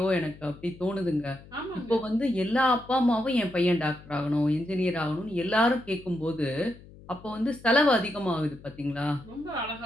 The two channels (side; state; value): left; noise; hum, 20 dB below the sound